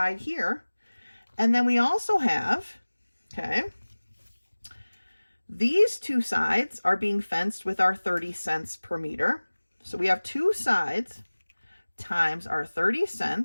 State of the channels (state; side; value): inverted; both; correlation -1.00